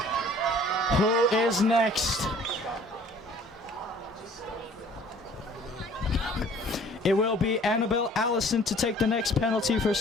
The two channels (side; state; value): both; normal; correlation 0.53